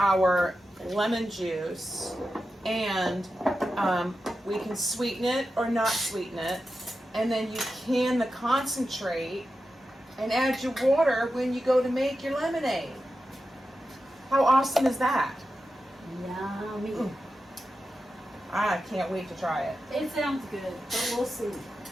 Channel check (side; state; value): both; normal; correlation 0.91